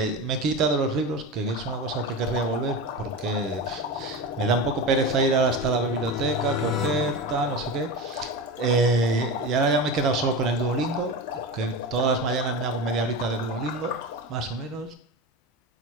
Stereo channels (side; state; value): both; normal; correlation 0.24